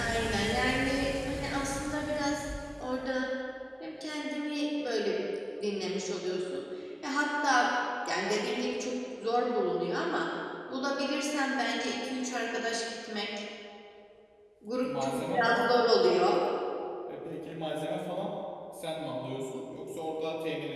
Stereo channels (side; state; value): both; identical; correlation 1.00